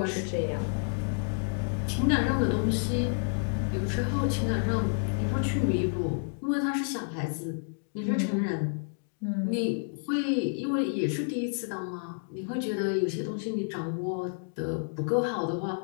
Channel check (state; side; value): silent; right; digital silence